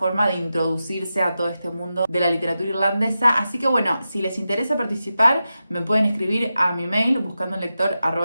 de introducirse a todo este mundo de la literatura irlandesa. Así que bueno, si les interesa participar, me pueden escribir a mi mail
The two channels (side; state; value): both; inverted; correlation -0.91